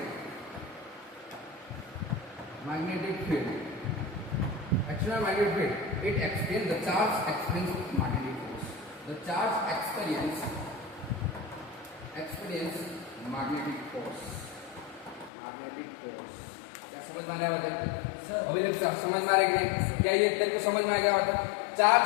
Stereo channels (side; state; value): right; drops out; at 15.3 s